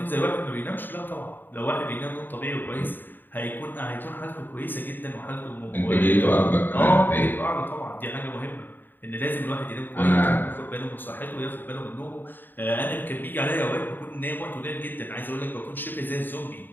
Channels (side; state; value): right; late; 0.092 ms